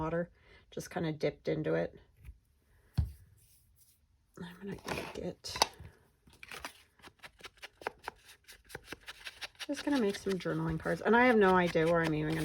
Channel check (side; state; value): both; identical; correlation 1.00